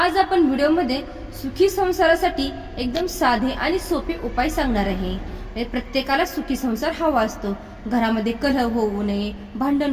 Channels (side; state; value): both; identical; correlation 1.00